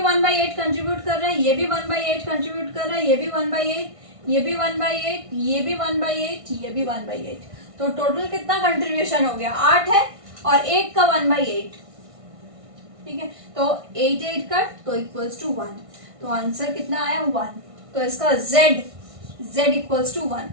1/8 कंट्रीब्यूट कर रहा है, ये भी 1/8 कंट्रीब्यूट कर रहा है, ये भी 1/8, ये भी 1/8, ये भी 1/8, ये भी 1/8। तो टोटल कितना कंट्रीब्यूशन हो गया? 8 है और 1 का 1/8, ठीक है। तो 8 कट तो इक्वल्स टू 1। तो आंसर कितना आया? 1। तो इसका z इक्वल्स टू 1।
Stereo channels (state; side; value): late; left; 1.6 ms